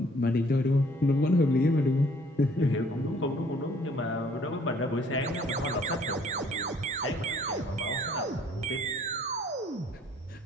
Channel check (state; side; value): normal; both; correlation 0.59